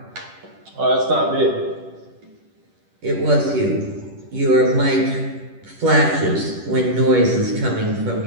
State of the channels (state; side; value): late; left; 10 ms